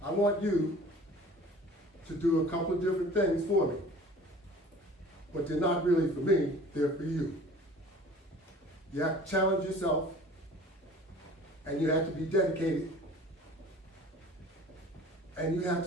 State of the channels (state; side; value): normal; both; correlation 0.46